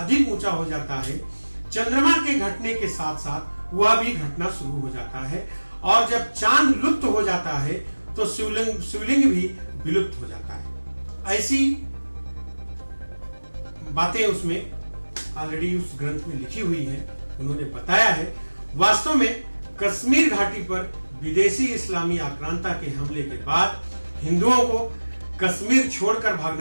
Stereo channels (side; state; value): both; inverted; correlation -1.00